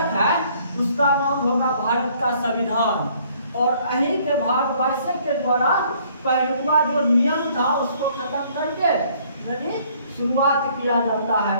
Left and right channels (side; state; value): both; inverted; correlation -0.61